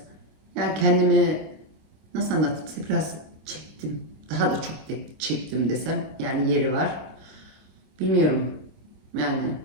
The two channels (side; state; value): left; late; 26 ms